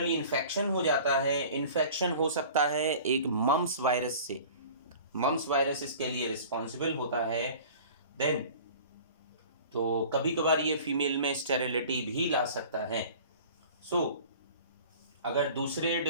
इन्फेक्शन हो जाता है, इन्फेक्शन हो सकता है एक मम्स वायरस से, मम्स वायरस इसके लिए रिस्पॉन्सिबल होता है। देन तो कभी कभार ये फीमेल में स्टेरिलिटी भी ला सकता है। सो अगर दूसरे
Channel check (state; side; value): inverted; both; correlation -0.43